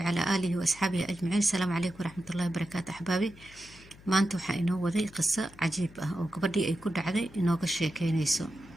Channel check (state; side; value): noise; left; hum, 22 dB below the sound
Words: آله وأصحابه أجمعين. السلام عليكم ورحمة الله وبركاته أحبابي. maanta waxaa inoo waday qiso cajiib ah oo gabadhii ay ku dhacday inooga sheekeynayso.